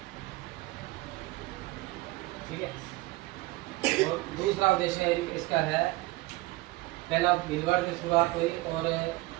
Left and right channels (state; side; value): quieter; left; 20.3 dB